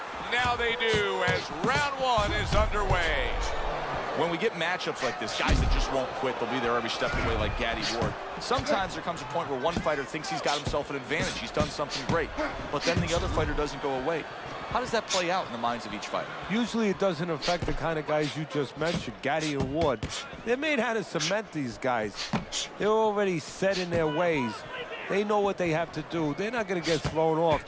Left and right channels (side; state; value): both; identical; correlation 1.00